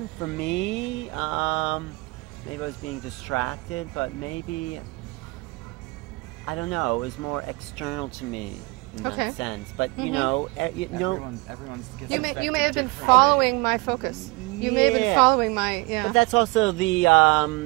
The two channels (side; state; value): left; quieter; 24.9 dB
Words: For me, maybe I was being distracted, but maybe, I don't know, it was more external to me in that sense. But you know, everyone's you may have been following my focus. You may have been following my But that's also the